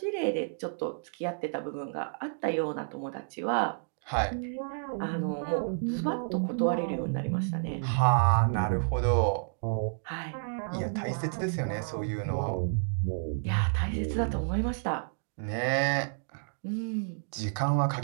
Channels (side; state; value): left; silent; digital silence